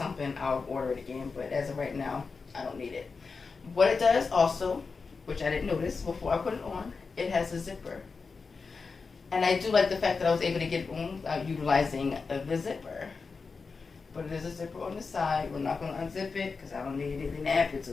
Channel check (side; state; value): right; quieter; 4.7 dB